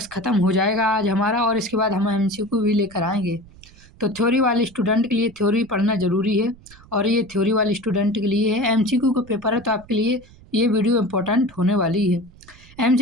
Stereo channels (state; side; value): noise; right; rumble, 24 dB below the sound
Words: ख़त्म हो जाएगा आज हमारा और इसके बाद हम एमसीक्यू भी लेकर आएंगे। तो थ्योरी वाले स्टूडेंट के लिए थ्योरी पढ़ना ज़रूरी है और ये थ्योरी वाले स्टूडेंट के लिए है। एमसीक्यू का पेपर है तो आपके लिए ये वीडियो इम्पोर्टेंट होने वाली है।